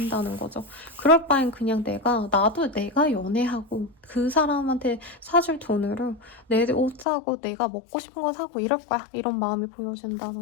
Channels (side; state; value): right; drops out; at 7.1 s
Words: 거죠. 그럴 바엔 그냥 나도 내가 연애하고 그 사람한테 사줄 돈으로 내 옷 사고 내가 먹고 싶은 거 사고 이럴 거야. 이런 마음이